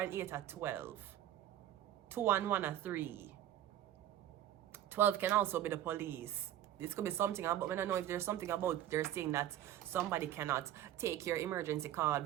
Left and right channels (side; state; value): left; quieter; 12.0 dB